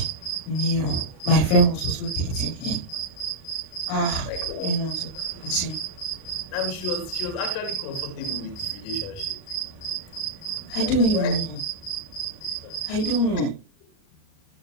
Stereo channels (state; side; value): late; right; 38 ms